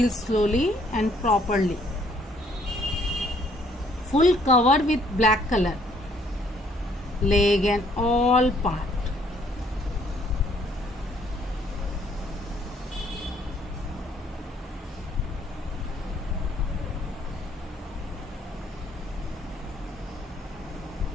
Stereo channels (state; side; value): normal; both; correlation 0.65